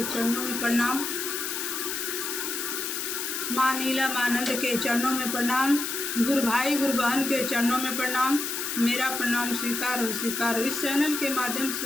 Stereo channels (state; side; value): noise; left; hiss, 3 dB below the sound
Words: चरणों में प्रणाम। माँ नीला मानंद के चरणों में प्रणाम। गुरु भाई गुरु बहन के चरणों में प्रणाम। मेरा प्रणाम स्वीकार हो, स्वीकार हो। इस चैनल के माध्यम